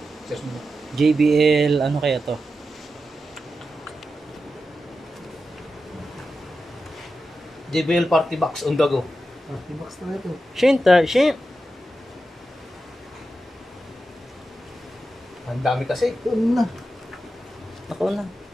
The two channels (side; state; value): both; normal; correlation 0.90